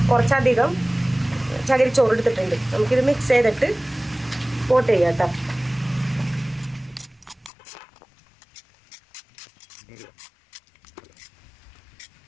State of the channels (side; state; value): right; drops out; at 7.5 s